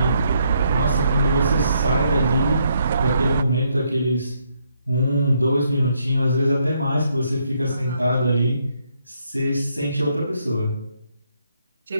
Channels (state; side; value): inverted; both; correlation -0.74